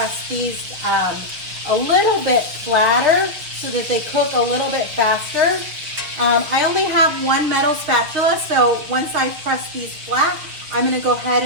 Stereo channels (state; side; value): late; left; 6.4 ms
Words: these a little bit flatter so that they cook a little bit faster. I only have one metal spatula, so once I press these flat, I'm gonna go ahead